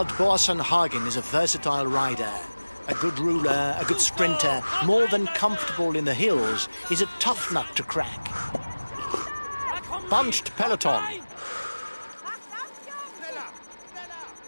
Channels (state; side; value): inverted; both; correlation -1.00